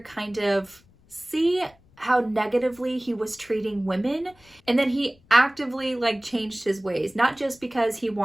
kind of see how negatively he was treating women, and then he actively changed his ways, not just because he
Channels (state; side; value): noise; left; rumble, 30 dB below the sound